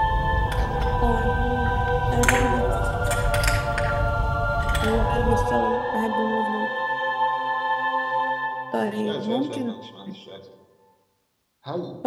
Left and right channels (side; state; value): both; identical; correlation 1.00